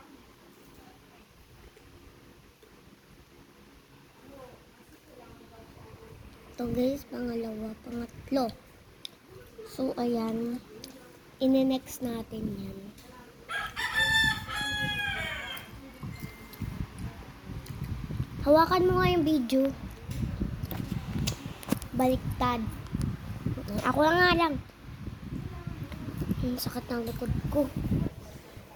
Ito guys, pangatlo. So, ayan. Ine-next natin yan. Hawakan mo nga yung video. Baliktad. Ako lang. Ang sakit ng likod ko.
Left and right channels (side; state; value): both; identical; correlation 1.00